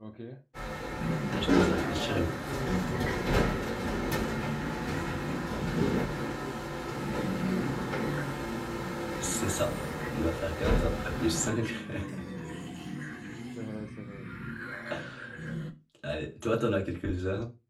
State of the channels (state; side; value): identical; both; correlation 1.00